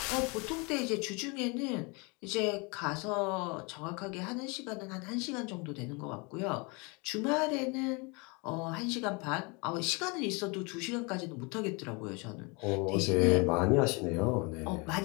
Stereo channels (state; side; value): quieter; right; 29.9 dB